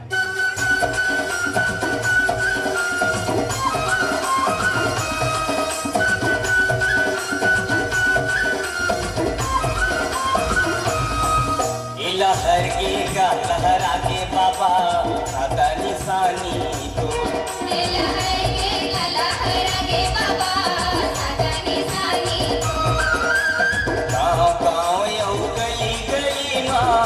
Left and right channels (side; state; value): both; identical; correlation 1.00